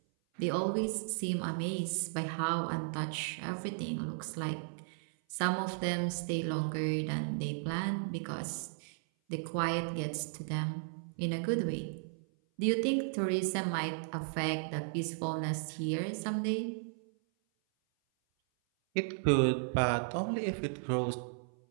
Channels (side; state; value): left; silent; 54 dB below the other